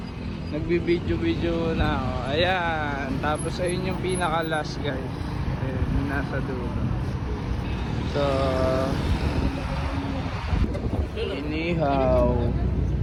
nagbibideo na ako. Ayan, tapos ayun yung pinaka last guys. Ayan, nasa dulo. So inihaw,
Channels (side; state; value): both; identical; correlation 1.00